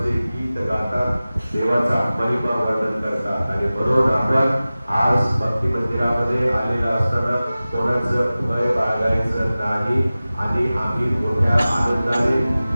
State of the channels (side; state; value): both; inverted; correlation -0.97